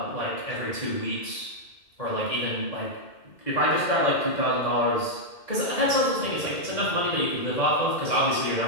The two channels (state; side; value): late; right; 2.0 ms